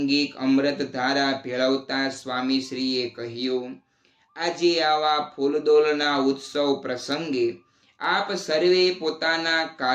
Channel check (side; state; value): both; identical; correlation 1.00